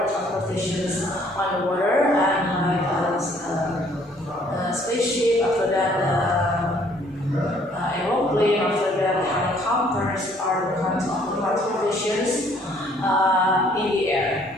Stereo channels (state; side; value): normal; both; correlation 0.61